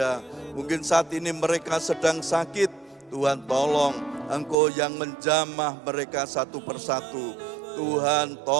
Mungkin saat ini mereka sedang sakit, Tuhan tolong Engkau yang menjamah mereka satu persatu. Tuhan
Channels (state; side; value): drops out; left; at 4.5 s